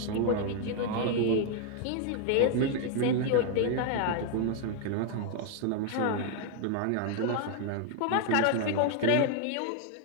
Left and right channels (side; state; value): both; different; correlation 0.00